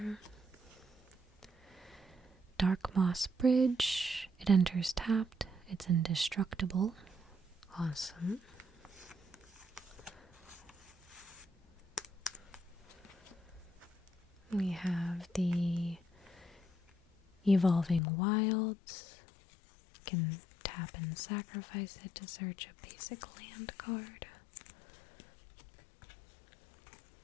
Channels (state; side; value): drops out; right; at 18.0 s